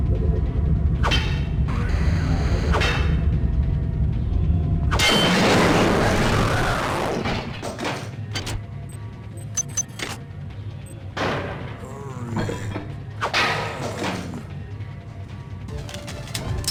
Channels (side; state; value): both; identical; correlation 1.00